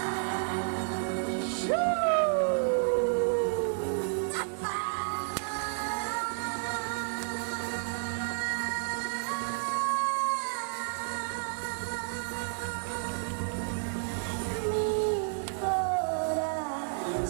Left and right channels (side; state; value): left; silent; digital silence